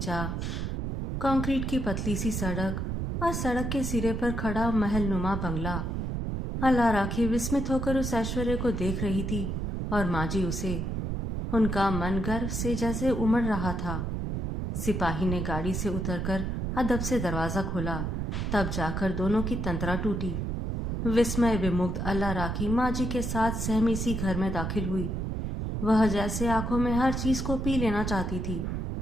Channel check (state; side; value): noise; right; rumble, 2 dB below the sound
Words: कंक्रीट की पतली सी सड़क और सड़क के सिरे पर खड़ा महल नुमा बंगला। अल्लाह राखी विस्मित होकर उस ऐश्वर्य को देख रही थी और माजी उसे। उनका मन गर्व से जैसे उमड़ रहा था। सिपाही ने गाड़ी से उतरकर अदब से दरवाज़ा खोला, तब जाकर दोनों की तंत्रा टूटी। विस्मय विमुग्ध अल्लाह राखी माजी के साथ सहमी सी घर में दाखिल हुई। वह जैसे आंखों में हर चीज को पी लेना चाहती थी।